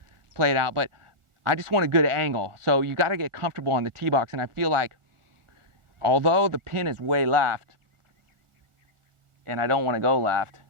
play it out, but I just want a good angle. So you got to get comfortable on the tee box. And I feel like, although the pin is way left, and I don't want to go left,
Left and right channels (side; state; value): left; late; 1.4 ms